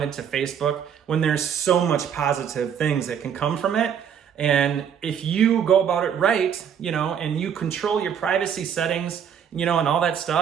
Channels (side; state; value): left; quieter; 8.2 dB